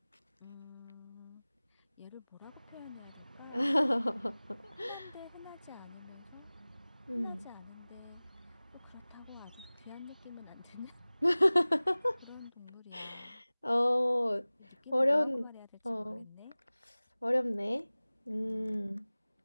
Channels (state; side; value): inverted; both; correlation -0.99